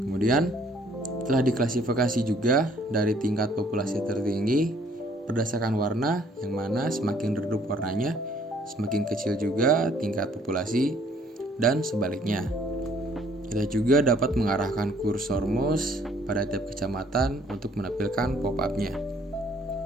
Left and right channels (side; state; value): both; normal; correlation 0.61